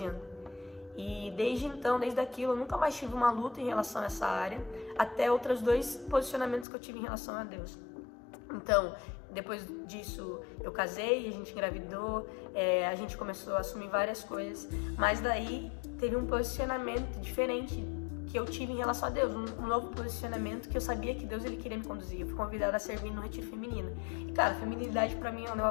E desde então, desde aquilo, eu nunca mais tive uma luta em relação a essa área, até outros 2 posicionamentos que eu tive em relação a Deus. Então, depois disso, eu casei, a gente engravidou, a gente começou a assumir várias coisas, mas daí teve um posicionamento diferente que eu tive em relação a Deus, um novo posicionamento que eu sabia que Deus, ele queria me conduzir. Eu fui convidada a servir no retiro feminino. E, cara, feminilidade pra mim é um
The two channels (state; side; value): drops out; right; at 6.7 s